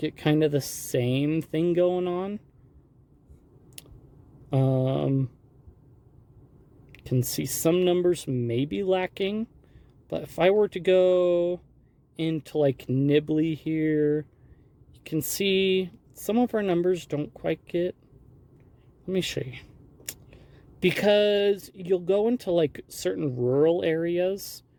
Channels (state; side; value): identical; both; correlation 1.00